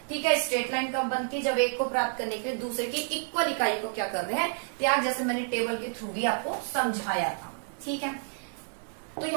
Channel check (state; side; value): silent; left; 58 dB below the other